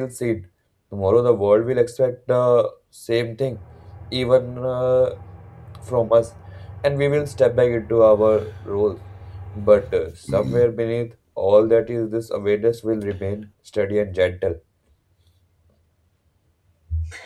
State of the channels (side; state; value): both; identical; correlation 1.00